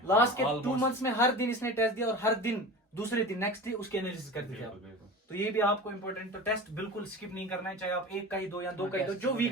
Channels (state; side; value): normal; both; correlation 0.33